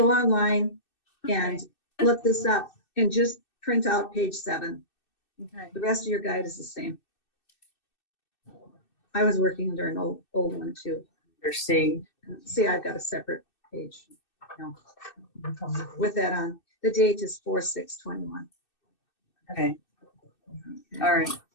online and look this up and just print out page 7, Okay. the rest of your guide is the same. I was working under an old one too. See. See, I've got a separate page with that on. The date is 4/6/21. Okay. All right.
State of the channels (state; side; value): late; right; 2.6 ms